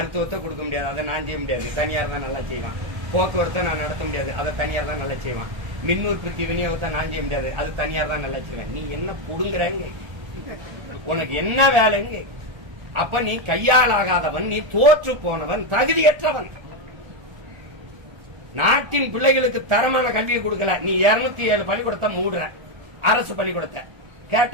கொடுக்க முடியாது, அதை நான் செய்ய முடியாது, தனியார் தான் நல்லா செய்வான். போக்குவரத்தை நான் நடத்த முடியாது, அதை தனியார் தான் நல்லா செய்வான். மின் உற்பத்தி விநியோகத்தை நான் செய்ய முடியாது, அது தனியார் தான் நல்லா செய்வேன். நீ என்ன புடுங்குறங்க? உனக்கு என்ன வேலைங்க? அப்ப நீ கையாளாகாதவன், நீ தோற்று போனவன், தகுதியற்றவன். நாட்டின் பிள்ளைகளுக்கு தரமான கல்வியை கொடுக்கல. நீ 207 பள்ளிக்கூடத்தை மூடுற, அரசு பள்ளிக்கூடத்தை.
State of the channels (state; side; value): late; left; 1.3 ms